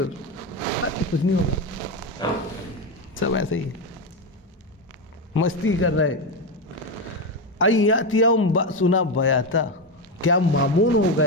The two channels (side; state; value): both; normal; correlation 0.12